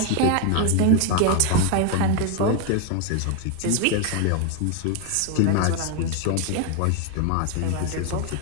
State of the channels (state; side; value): different; both; correlation 0.01